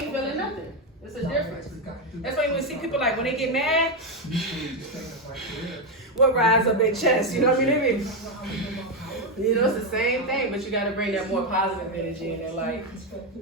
feeling nothing. It's a difference. That's why you see people like when they get mad, what rise up their chest, you know what I mean? You know, it's the same thing, but you gotta bring that more positive energy in there, like,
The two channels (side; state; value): both; normal; correlation 0.07